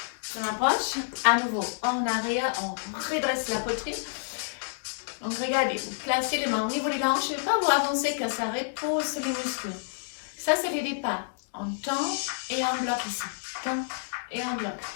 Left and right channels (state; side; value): silent; right; digital silence